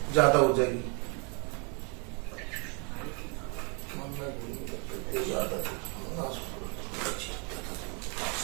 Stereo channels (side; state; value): left; quieter; 35.1 dB